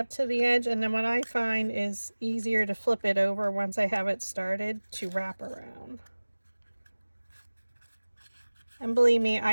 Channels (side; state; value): both; inverted; correlation -1.00